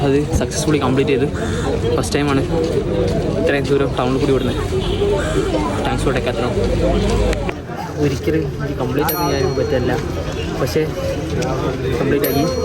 അത് സക്സസ്ഫുള്ളി കംപ്ലീറ്റ് ചെയ്ത്. ഫസ്റ്റ് ടൈമാണ് ഇത്രയും ദൂരം ടൗണിൽ കൂടി വിടുന്നത്. Thanks for Decathlon. ഒരിക്കലും കംപ്ലീറ്റ് ആക്കി ചെയ്യാൻ പറ്റില്ല, പക്ഷേ കംപ്ലീറ്റ് ആക്കി.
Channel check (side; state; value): both; identical; correlation 1.00